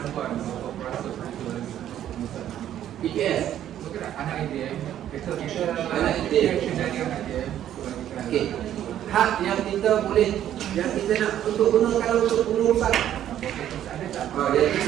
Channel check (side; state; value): left; quieter; 11.2 dB